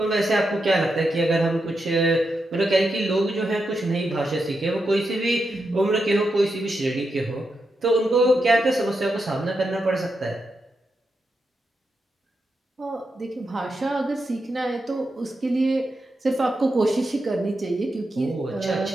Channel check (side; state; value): both; normal; correlation 0.86